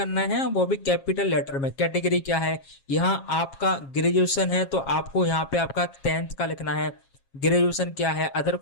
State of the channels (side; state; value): right; late; 7.4 ms